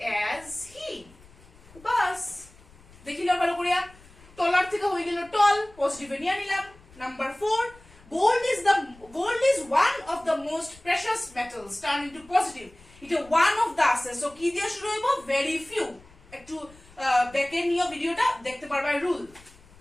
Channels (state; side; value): noise; left; rumble, 25 dB below the sound